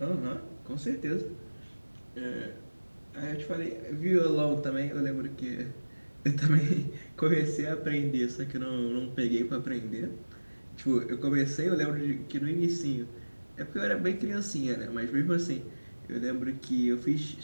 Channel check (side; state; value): both; inverted; correlation -1.00